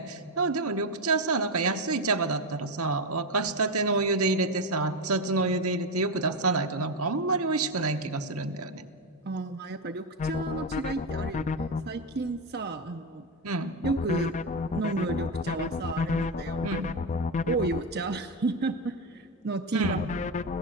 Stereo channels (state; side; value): normal; both; correlation 0.11